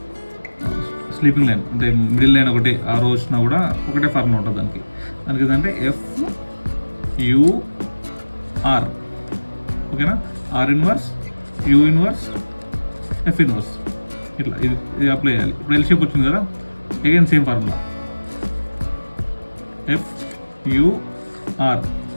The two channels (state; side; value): inverted; both; correlation -1.00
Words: స్లీపింగ్ లైన్ అంటే మిడిల్ లైన్ ఒకటి ఆ రోజు వచ్చినా కూడా ఒకటే ఫార్ములా ఉంటుంది దానికి ఏంటంటే ఎఫ్ యూ ఆర్. ఓకేనా, R inverse U inverse F inverse ఇట్లా ఇది అప్లై చేయాలి. ఇప్పుడు ఎల్ షేప్ వచ్చింది కదా, again same formula F U R